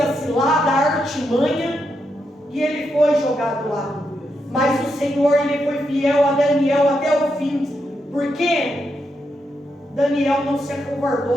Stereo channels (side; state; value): both; normal; correlation 0.83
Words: cilada, a artimanha, e ele foi jogado lá. Mas o Senhor, ele foi fiel a Daniel até o fim. Por quê? Daniel não se